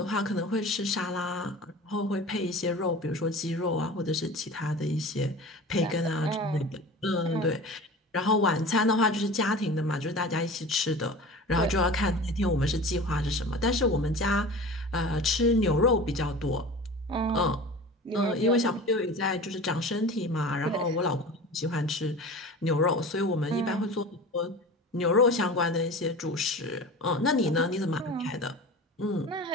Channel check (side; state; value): both; normal; correlation 0.36